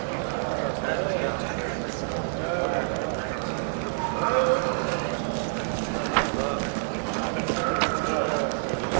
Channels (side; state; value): left; silent; digital silence